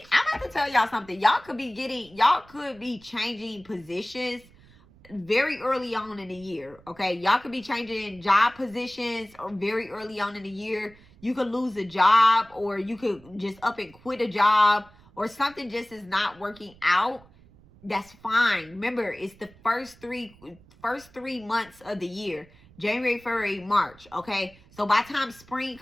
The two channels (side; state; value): right; noise; rumble, 25 dB below the sound